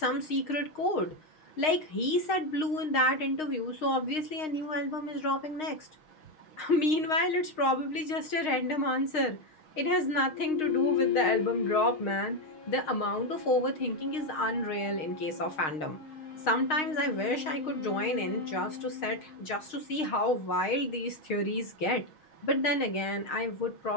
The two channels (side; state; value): right; late; 6.4 ms